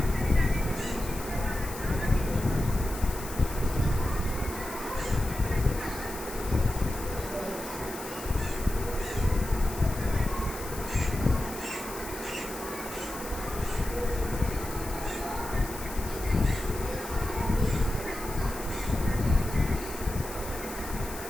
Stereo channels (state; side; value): noise; left; hiss, 12 dB below the sound